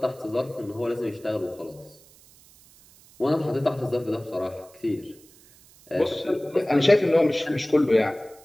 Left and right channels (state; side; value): noise; right; hiss, 26 dB below the sound